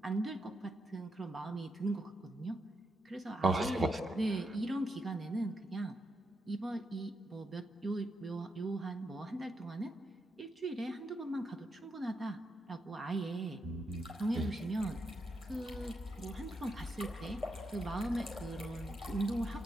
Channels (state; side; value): normal; both; correlation 0.83